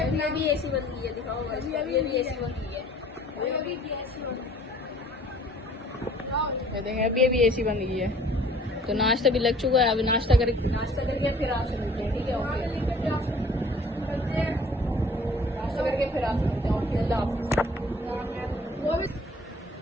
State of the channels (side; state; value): both; normal; correlation 0.53